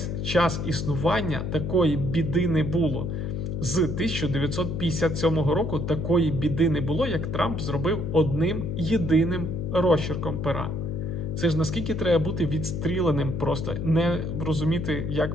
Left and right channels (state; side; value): noise; left; hum, 3 dB below the sound